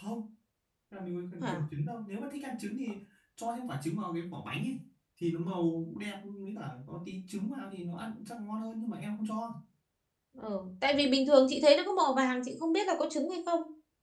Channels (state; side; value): identical; both; correlation 1.00